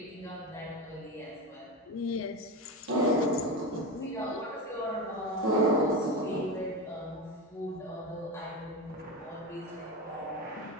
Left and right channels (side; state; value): both; normal; correlation 0.20